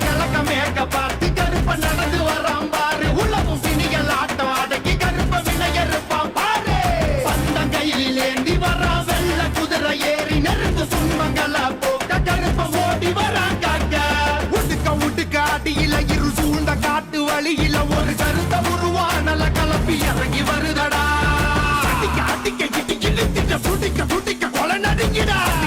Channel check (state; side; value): identical; both; correlation 1.00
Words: கிழக்க மேற்க பார்த்து கருப்ப நடந்து வரான் பாரு. உலகம் பிணிகள் ஆட்டம் அடக்கி கருப்ப வினையறுப்பான் பாரு. பந்தம் கையில் ஏந்தி வரா வெள்ள குதிரை ஏறி நெருங்கு துன்பங்களா போக்க கருப்ப ஓடி வரான் காக்க. உடுக்க அடியில இரு சூழ்ந்த காட்டு வழியில ஒரு கருத்த உருவானல கலப்பி இறங்கி வருதடா. அடிக்க இழுத்திட்ட புடிக்க கொலை நடுங்கிடா.